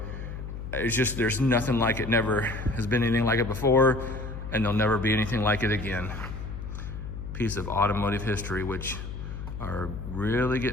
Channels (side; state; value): left; noise; hum, 8 dB below the sound